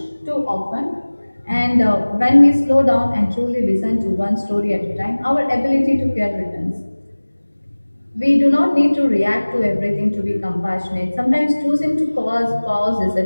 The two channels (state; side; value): inverted; both; correlation -1.00